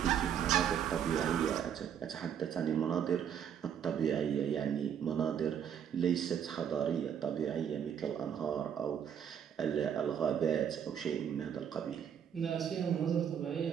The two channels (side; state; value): left; quieter; 8.6 dB